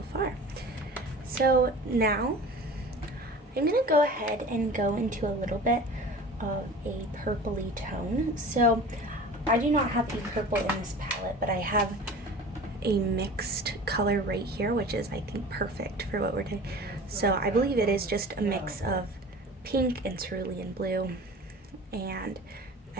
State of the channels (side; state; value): both; normal; correlation 0.39